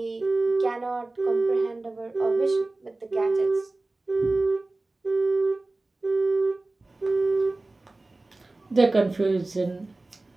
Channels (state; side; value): quieter; left; 3.0 dB